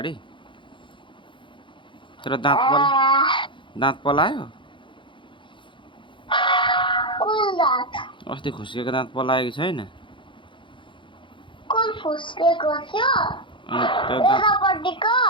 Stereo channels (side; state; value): right; late; 0.24 ms